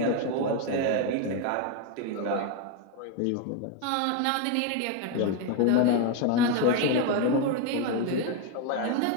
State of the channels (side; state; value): both; different; correlation 0.02